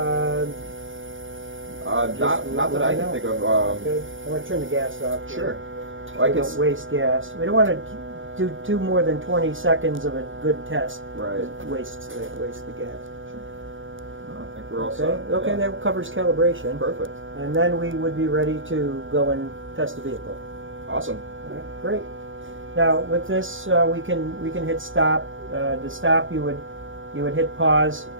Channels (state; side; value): late; left; 0.57 ms